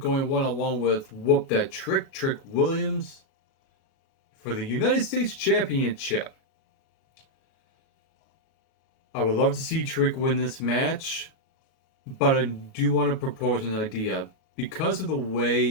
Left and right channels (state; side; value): late; right; 37 ms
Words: one-on-one with Whoop That Trick Williams for the United States Championship. I would love to see Trick win this match, but I do want to propose an idea. Because of the